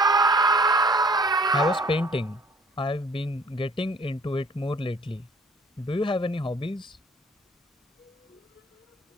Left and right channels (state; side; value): normal; both; correlation 0.54